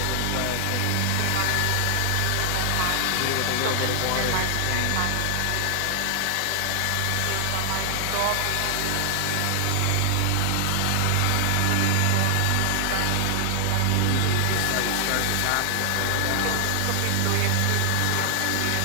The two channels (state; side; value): different; both; correlation 0.00